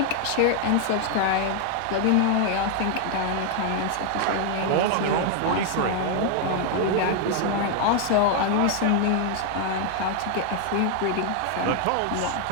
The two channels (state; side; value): different; both; correlation 0.00